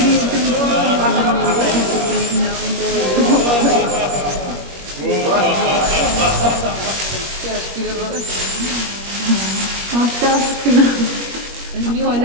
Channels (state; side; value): late; left; 21 ms